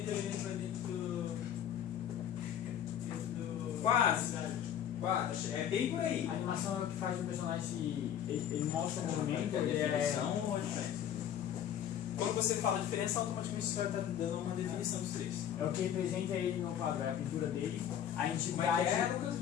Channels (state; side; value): quieter; right; 9.8 dB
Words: o elemento vai dentro do... Quase. É bem por aí. A animação é o que faz o personagem, ele mostra o movimento, ele definição ou a diferença? Quando você fala diferença, automaticamente você está dando uma definição dos três. é o que representa ele no quadro, é a pintura dele, a Como entidade. é que é, Lucas?